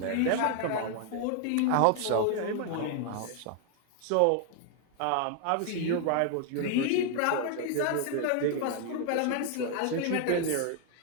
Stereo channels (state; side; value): different; both; correlation 0.00